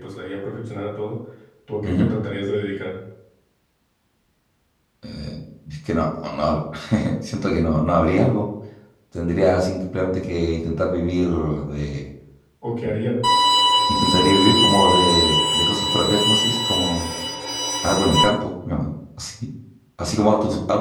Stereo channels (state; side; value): identical; both; correlation 1.00